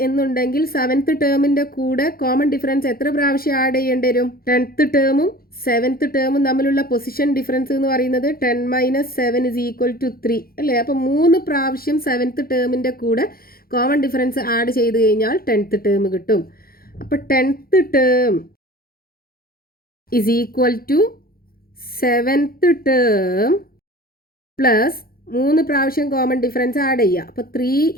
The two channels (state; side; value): late; right; 0.43 ms